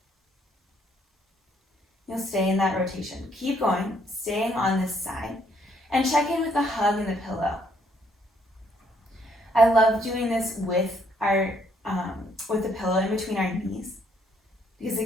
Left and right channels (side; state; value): both; normal; correlation 0.69